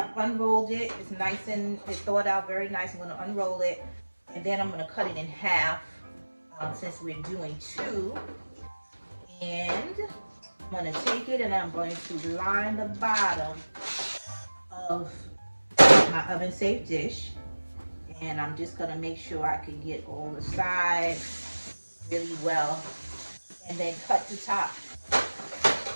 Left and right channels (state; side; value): inverted; both; correlation -1.00